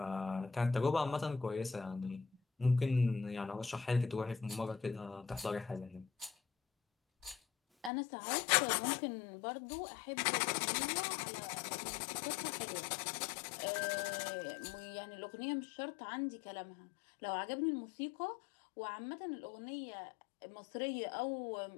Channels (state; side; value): drops out; right; at 7.9 s